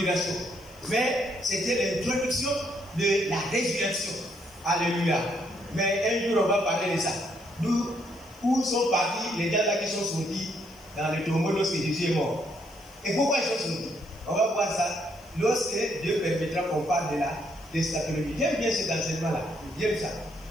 Mais c'était l'introduction de la résurrection. Alléluia. Mais un jour, on va parler de ça. D'où sont partis les gens là qui sont sortis dans le tombeau lorsque Jésus est mort. Et pourquoi ils sont sortis? On va voir ça lorsque Dieu permettra qu'on parle de la d'eschatologie. J'aime bien cet enseignement-là. J'aime ça.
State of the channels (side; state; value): left; noise; hiss, 28 dB below the sound